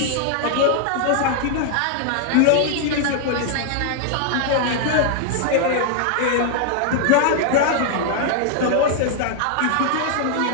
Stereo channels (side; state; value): both; different; correlation 0.00